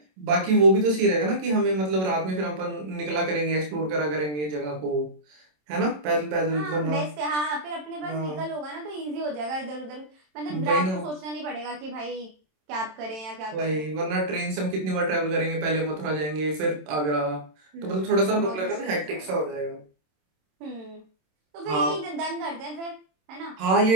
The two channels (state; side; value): late; left; 27 ms